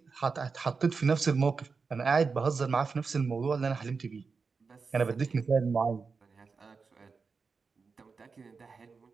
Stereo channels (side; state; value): left; quieter; 4.9 dB